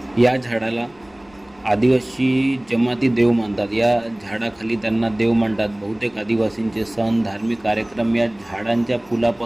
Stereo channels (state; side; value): noise; left; rumble, 29 dB below the sound